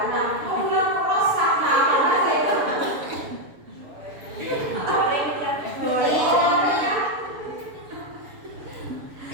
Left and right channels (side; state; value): left; late; 7.0 ms